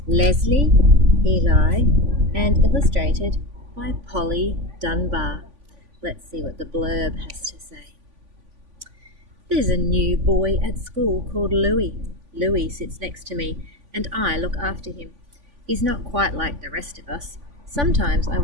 Leslie Eli and illustrated by Polly Dunbar. Let's see what the blurb has to say. There's a new boy at school called Louis. Louis sits next to me and I look after him. He's not quite like the rest of us. Sometimes I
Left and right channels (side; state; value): left; late; 3.5 ms